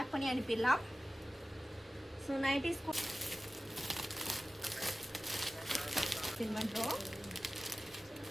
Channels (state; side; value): normal; both; correlation 0.96